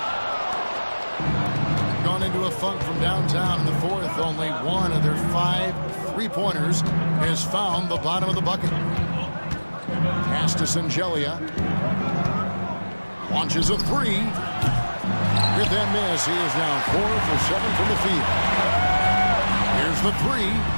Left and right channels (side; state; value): both; inverted; correlation -1.00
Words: Gone into a funk from downtown in the fourth. Only 1 of their 5 three-pointers has found the bottom of the bucket. Pass to Sangelia. Launches a 3. With that miss, he is now 4 for 7 from the field. Here's the 3.